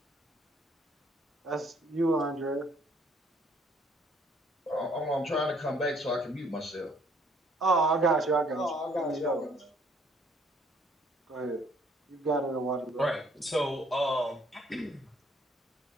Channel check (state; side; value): normal; both; correlation 0.63